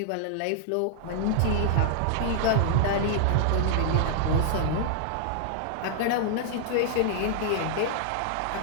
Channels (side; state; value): both; different; correlation -0.01